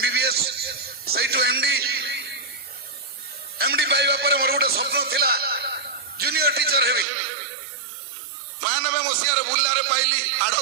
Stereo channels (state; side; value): drops out; left; at 7.1 s